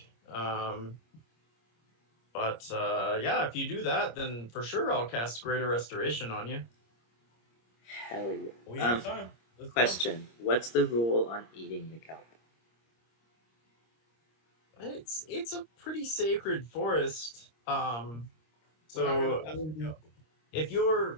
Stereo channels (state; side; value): late; right; 26 ms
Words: But yeah, if you do that, then for sure I'll cast Greater Restoration on you. Hell yeah. we have time. Let's go. Question: what's the rule on eating the kelp? It's a pretty sacred forest. We're not So gonna mess with you. if you're